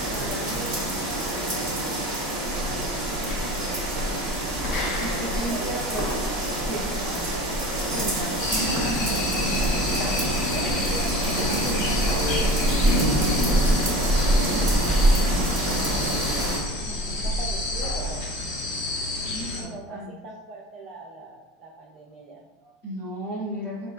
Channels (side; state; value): both; normal; correlation 0.38